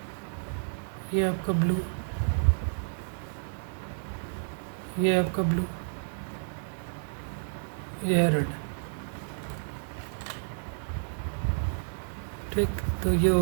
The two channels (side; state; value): left; silent; digital silence